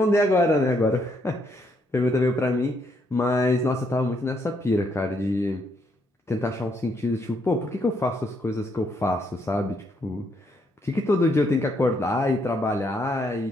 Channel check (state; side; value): normal; both; correlation 0.73